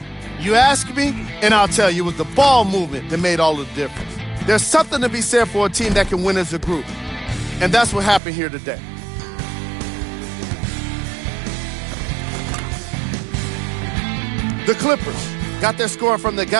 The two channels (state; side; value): drops out; left; at 8.2 s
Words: You ask me, and I'll tell you, it was the ball movement that made all the difference. There's something to be said for a team that can win as a group, and that's what happened here today. The Clippers got their score from the